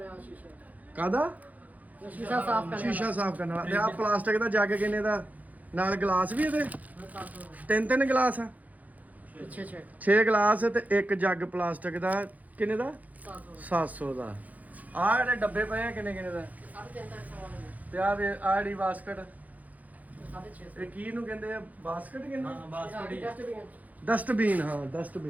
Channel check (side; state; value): left; late; 0.078 ms